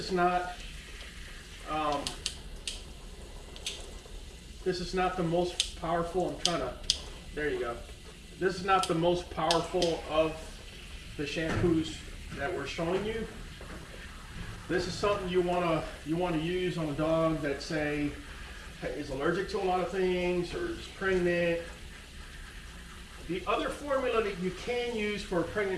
not the most powerful. There you go. This is not the most powerful of the shampoos that we're showing you. This is something you want to use on a dog that, say, is allergic to a lot of things or is pregnant. The other formula that you can use for a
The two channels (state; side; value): identical; both; correlation 1.00